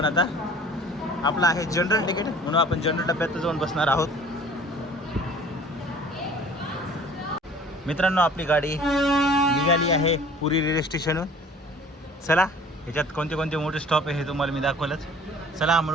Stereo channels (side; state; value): both; normal; correlation 0.48